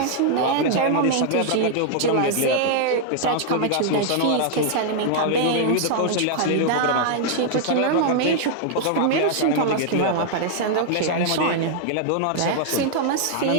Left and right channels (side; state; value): both; different; correlation -0.01